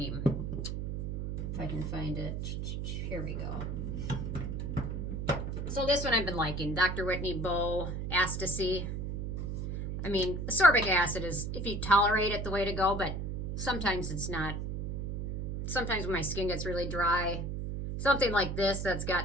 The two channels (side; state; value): right; noise; hum, 3 dB below the sound